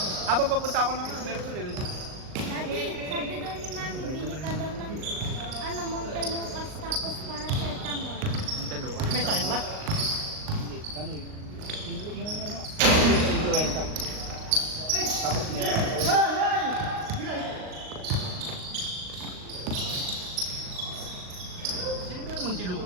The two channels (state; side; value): late; left; 38 ms